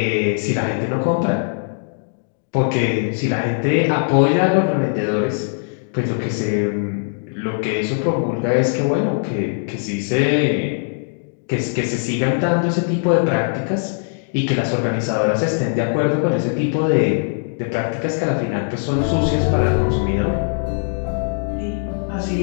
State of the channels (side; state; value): right; silent; digital silence